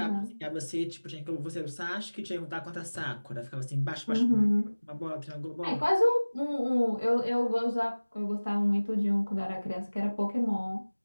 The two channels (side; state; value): both; inverted; correlation -1.00